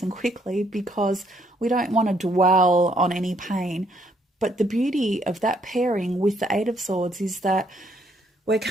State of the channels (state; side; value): normal; both; correlation 0.69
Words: and quickly because we don't want to dwell on any pain. But the beauty of that pairing with the 8 of Swords is that we're